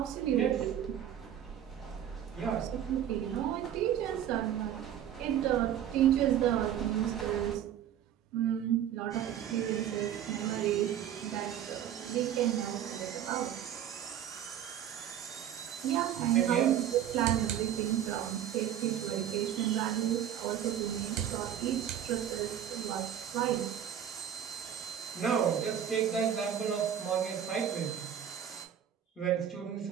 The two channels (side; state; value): left; quieter; 10.0 dB